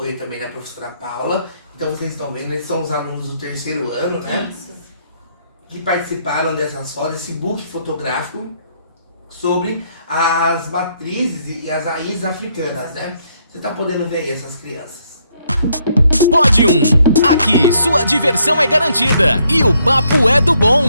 também da professora Paula. Então vocês estão vendo, eles são os alunos do 3º ano, né? Isso. Que participaram dessas fotos, esse book fotográfico sobre as matrizes e as raízes africanas, né? Você está podendo ver aí essas crianças. Pode aqui sua diversão é garantida e o papo é do bom.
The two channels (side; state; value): both; inverted; correlation -0.72